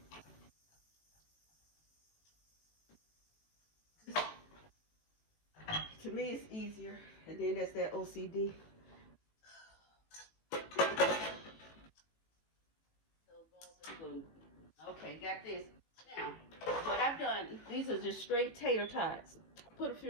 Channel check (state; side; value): late; right; 18 ms